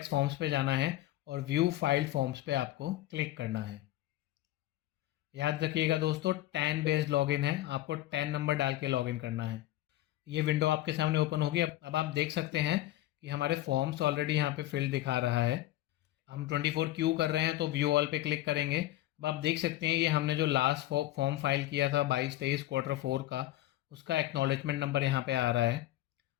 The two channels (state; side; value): quieter; right; 15.3 dB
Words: फॉर्म्स पे जाना है और व्यू फाइल्ड फॉर्म्स पे आपको क्लिक करना है। याद रखिएगा दोस्तों, टैन बेस्ड लॉगिन है, आपको टैन नंबर डाल के लॉगिन करना है। ये विंडो आपके सामने ओपन होगी। अब आप देख सकते हैं कि हमारे फॉर्म्स ऑलरेडी यहाँ पे फिल दिखा रहा है। हम 24Q कर रहे हैं तो व्यू ऑल पे क्लिक करेंगे। अब आप देख सकते हैं ये हमने जो लास्ट फॉर्म फाइल किया था 22-23 Q4 का, उसका एक्नॉलेजमेंट नंबर यहाँ पे आ रहा है,